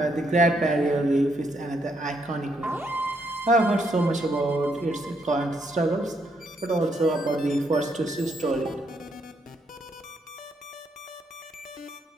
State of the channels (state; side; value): normal; both; correlation 0.75